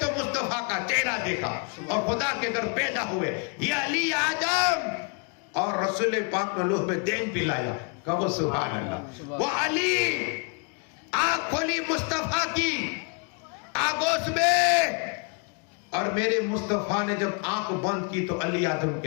تو مصطفیٰ کا چہرہ دیکھا اور خدا کے گھر پیدا ہوئے. یہ علی اعظم اور رسول پاک نے لوح پہ دین پلایا. کہو سبحان اللہ. وہ علی آنکھ کھولی مصطفیٰ کی آگوش میں, اور میرے مصطفیٰ نے جب آنکھ بند کی تو علی اعظم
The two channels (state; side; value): quieter; right; 35.7 dB